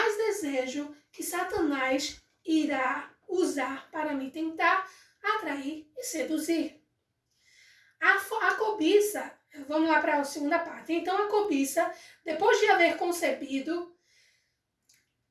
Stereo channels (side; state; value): both; identical; correlation 1.00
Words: desejo que Satanás irá usar para me tentar, atrair e seduzir. A cobiça, vamos lá para a segunda parte. Então a cobiça, depois de haver se